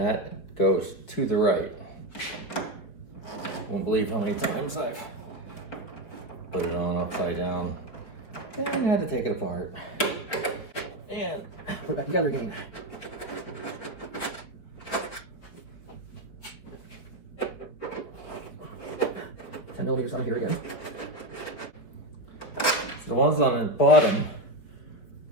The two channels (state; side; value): late; right; 4.6 ms